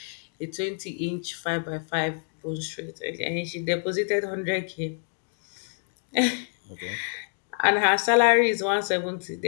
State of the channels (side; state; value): right; silent; 60 dB below the other